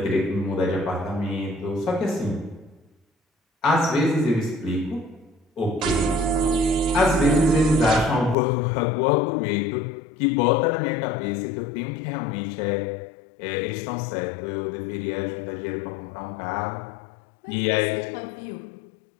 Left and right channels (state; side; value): drops out; right; at 8.3 s